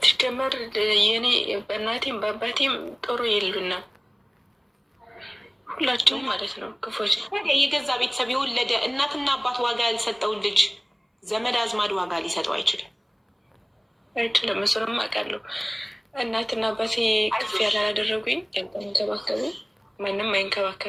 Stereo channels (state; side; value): identical; both; correlation 1.00